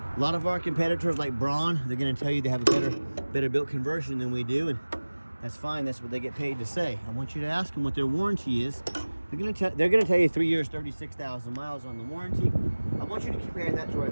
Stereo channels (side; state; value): both; inverted; correlation -1.00